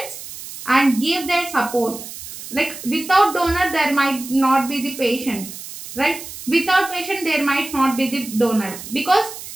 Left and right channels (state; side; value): noise; right; hiss, 12 dB below the sound